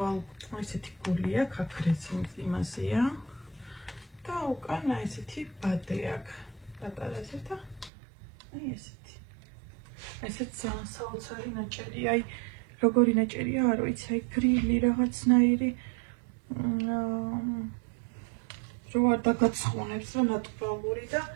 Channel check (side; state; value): left; drops out; at 7.9 s